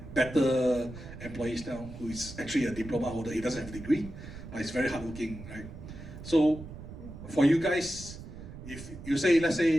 better employees now, who is actually a diploma holder. He doesn't have a degree, but he's very hardworking, right? So for you guys, if you say, let's say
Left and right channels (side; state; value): right; noise; rumble, 13 dB below the sound